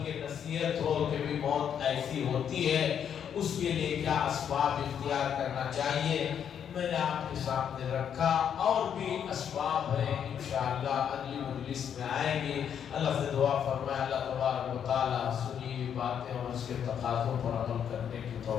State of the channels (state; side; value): quieter; right; 8.5 dB